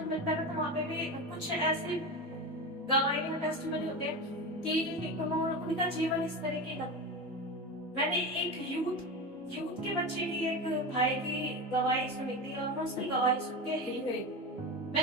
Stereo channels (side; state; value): both; normal; correlation 0.23